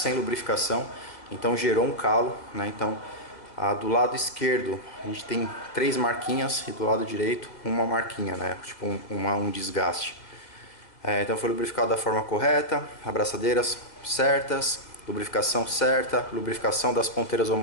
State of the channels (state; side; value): late; right; 2.0 ms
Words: lubrificação, então gerou um calo, né? Então do lado esquerdo a gente tem 3 marquinhas e do lado direito uma marquinha, né? Tipo um desgaste. Então foi lubrificado da forma correta, abraçadeiras certas, lubrificação certa, lubrificação das ponteiras